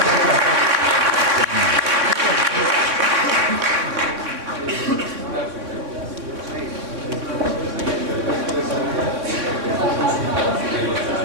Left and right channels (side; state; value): left; late; 3.6 ms